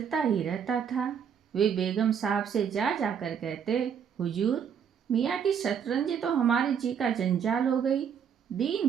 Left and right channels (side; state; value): left; quieter; 7.7 dB